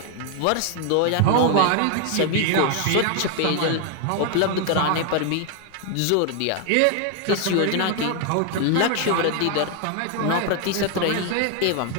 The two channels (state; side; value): different; both; correlation 0.00